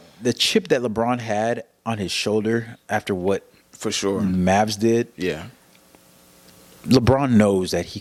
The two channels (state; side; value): identical; both; correlation 1.00